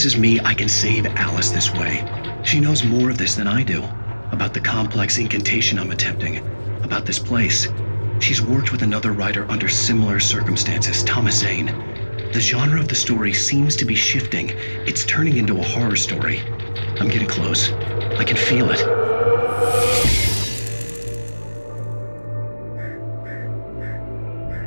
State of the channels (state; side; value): inverted; both; correlation -1.00